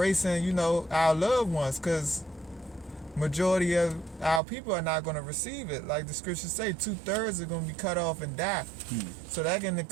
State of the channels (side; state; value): left; drops out; at 4.4 s